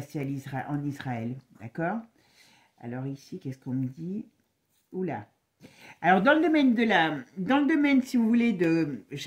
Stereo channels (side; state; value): both; identical; correlation 1.00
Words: en Israël. D'accord? Alors ici, qu'est-ce qu'on me dit? Oula! Alors, dans le domaine, si vous voulez,